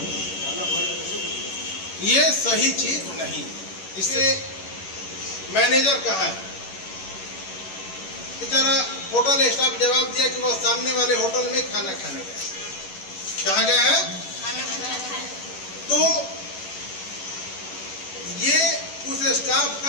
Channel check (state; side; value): late; right; 11 ms